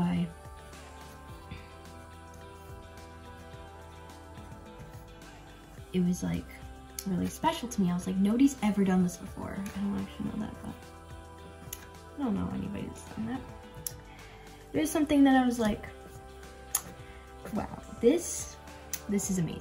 it was like really special to me. I was like, nobody's ever done this before. I don't actually know that, but I don't know anybody that's done that. It was something that I was like, wow, this is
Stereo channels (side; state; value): both; identical; correlation 1.00